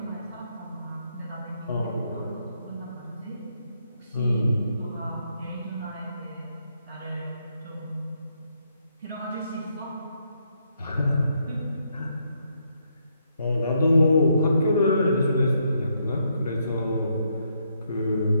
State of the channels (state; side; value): inverted; both; correlation -0.76